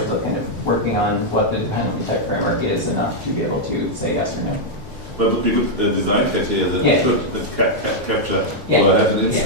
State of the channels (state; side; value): late; left; 3.1 ms